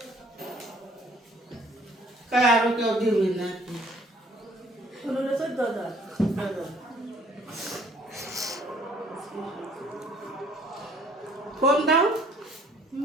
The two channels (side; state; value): both; normal; correlation 0.59